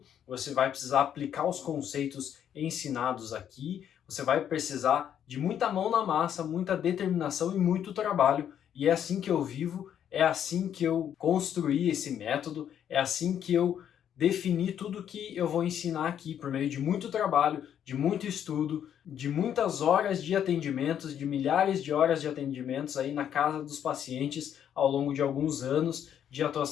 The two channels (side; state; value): right; quieter; 9.5 dB